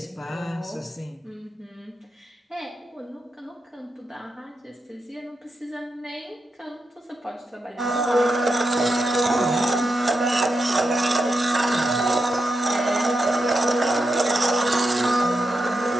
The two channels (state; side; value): normal; both; correlation 0.86